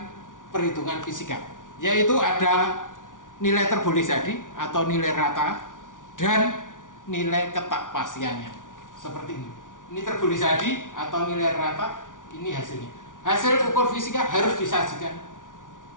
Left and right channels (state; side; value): late; right; 0.88 ms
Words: perhitungan fisika, yaitu ada nilai terboleh jadi atau nilai rata dan nilai ketakpastiannya seperti ini. Ini terboleh jadi atau nilai rata, ini hasilnya. Hasil ukur fisika harus disajikan